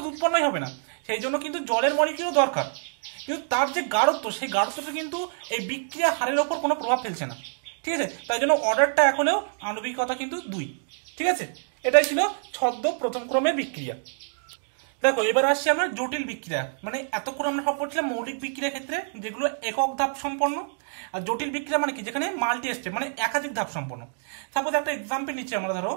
উৎপন্নই হবে না, সেই জন্য কিন্তু জলের মলিকুলও দরকার, কিন্তু তার যে গাঢ়ত্ব সেই গাঢ়ত্বটা কিন্তু এই বিক্রিয়া হারের ওপর কোনো প্রভাব ফেলছে না, ঠিক আছে, তাই জন্য অর্ডারটা এখনো আণবিকতা কিন্তু 2, ঠিক আছে। এটাই ছিল ছদ্ম প্রথম ক্রমের বিক্রিয়া। দেখো এবার আসছি আমরা জটিল বিক্রিয়া, মানে এতক্ষণ আমরা সব পড়ছিলাম মৌলিক বিক্রিয়ার ক্ষেত্রে যেগুলো একক ধাপ সম্পন্ন, আর জটিল বিক্রিয়া মানে কি যেখানে মাল্টি স্টেপ মানে একাধিক ধাপ সম্পন্ন। সাপোজ একটা এক্সাম্পল নিচ্ছি আমরা, ধরো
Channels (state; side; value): silent; left; digital silence